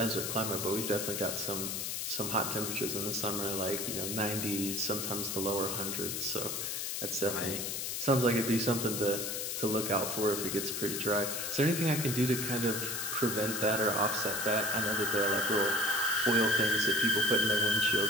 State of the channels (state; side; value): noise; left; hiss, 3 dB below the sound